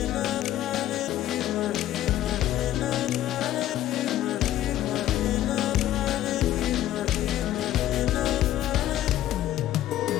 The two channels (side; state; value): right; quieter; 13.1 dB